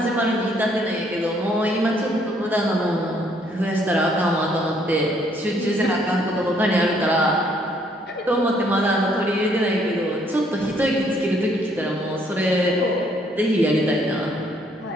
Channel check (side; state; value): both; normal; correlation 0.67